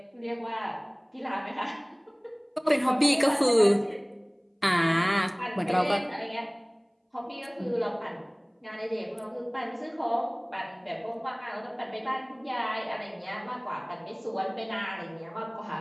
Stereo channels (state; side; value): identical; both; correlation 1.00